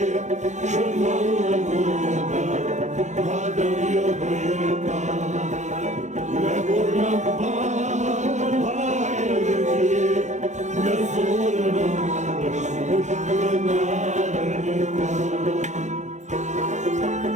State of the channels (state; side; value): late; left; 0.34 ms